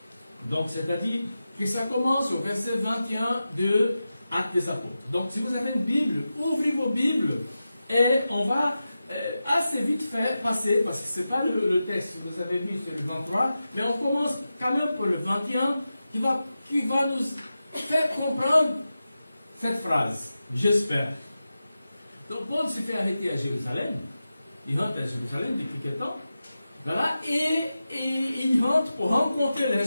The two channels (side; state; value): both; inverted; correlation -0.92